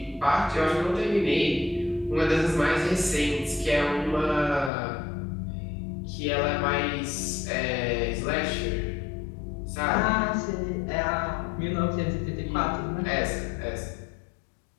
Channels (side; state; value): right; drops out; at 4.7 s